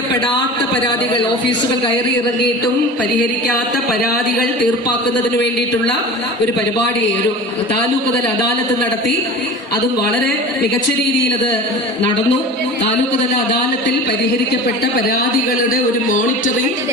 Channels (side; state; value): both; normal; correlation 0.36